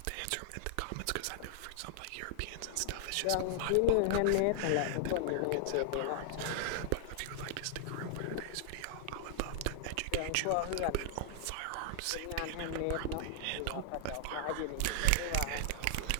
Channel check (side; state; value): both; different; correlation -0.01